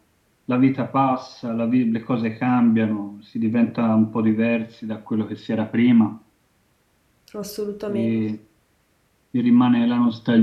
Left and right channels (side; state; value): both; identical; correlation 1.00